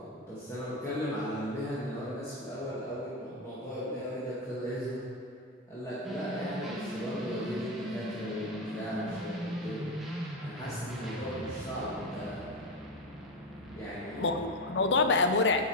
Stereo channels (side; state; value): both; normal; correlation 0.12